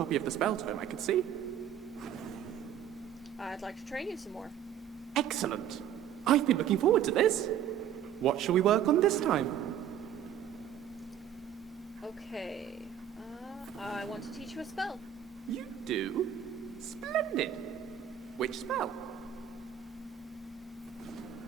of the spell tome, I could see. I'd like to train you some more. Excellent. I've been looking forward to this. What shall we work on this time? Okay. I want to teach you a spell. You do? Splendid. Which spell?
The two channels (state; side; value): quieter; left; 9.8 dB